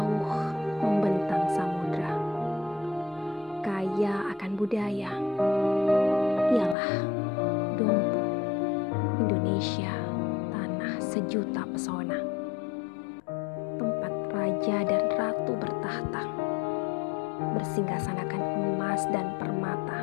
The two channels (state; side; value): drops out; right; at 6.8 s